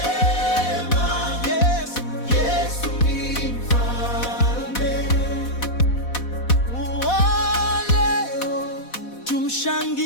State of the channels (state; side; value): late; right; 4.1 ms